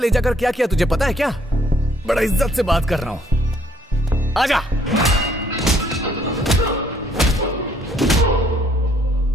जाकर क्या किया तुझे पता है क्या? बड़ा इज्जत से बात कर रहा हूं, आजा।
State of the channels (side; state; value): both; normal; correlation 0.65